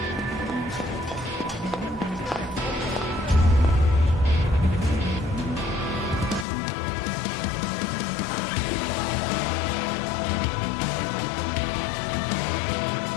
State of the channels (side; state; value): right; drops out; at 6.5 s